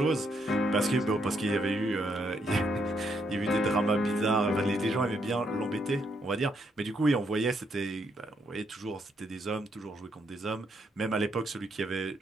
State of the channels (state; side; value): normal; both; correlation 0.75